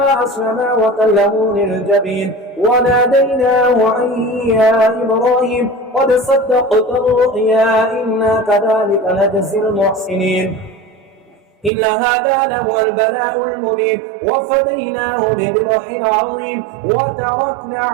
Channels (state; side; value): drops out; left; at 11.7 s